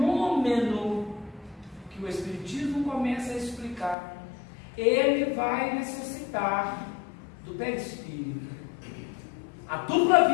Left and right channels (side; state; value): right; drops out; at 4.0 s